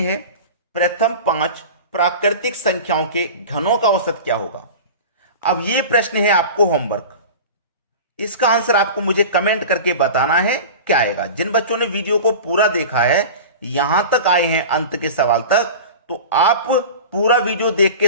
प्रथम 5 प्राकृतिक संख्याओं के घनों का औसत क्या होगा? अब यह प्रश्न है आपको होमवर्क, इसका आंसर आपको मुझे कमेंट करके बताना है क्या आएगा। जिन बच्चों ने वीडियो को पूरा देखा है, यहां तक आए हैं अंत के सवाल तक, तो आप पूरा वीडियो देख के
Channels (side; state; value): both; inverted; correlation -0.33